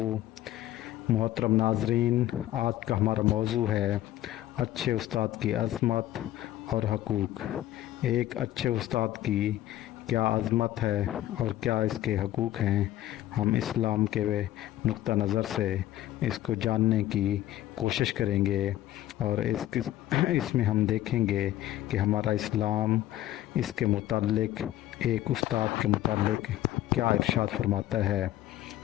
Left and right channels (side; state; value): right; quieter; 13.9 dB